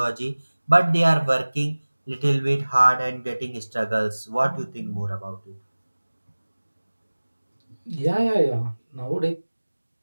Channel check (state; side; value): inverted; both; correlation -1.00